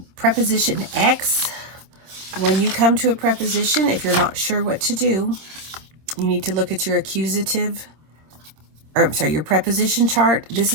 preposition X, when you come to a preposition, if you're not sure what to do, you need to look at your accusative, or I'm sorry, your preposition chart. This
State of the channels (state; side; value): late; left; 26 ms